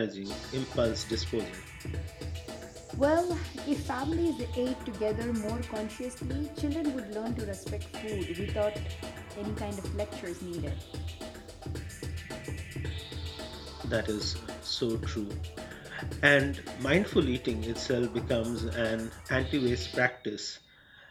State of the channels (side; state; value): both; identical; correlation 1.00